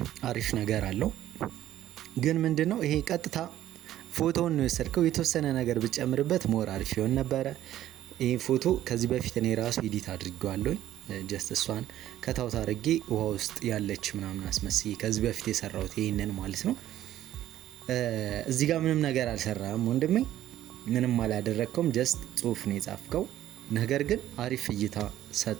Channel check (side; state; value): left; quieter; 12.8 dB